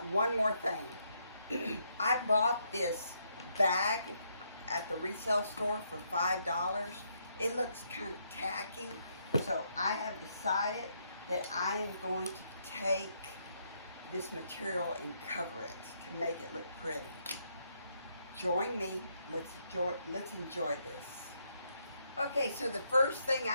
one more thing. I bought this bag at the resale store for $5. It looks kind of tacky, so I have decided that I am going to take this material and cover it to make it look pretty. Join me. Let's enjoy this. Okay, so the first thing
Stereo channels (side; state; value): both; inverted; correlation -0.75